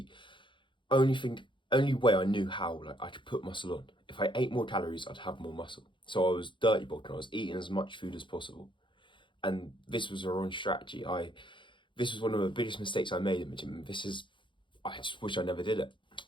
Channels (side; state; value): right; late; 0.23 ms